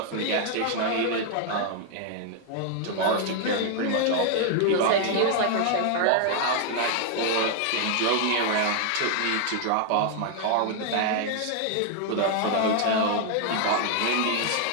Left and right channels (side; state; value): both; different; correlation 0.00